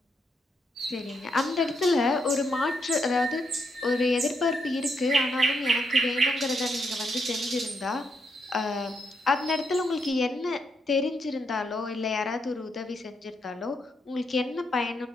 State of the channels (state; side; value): normal; both; correlation 0.79